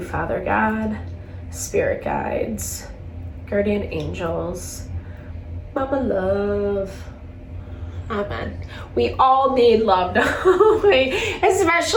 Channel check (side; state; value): both; identical; correlation 1.00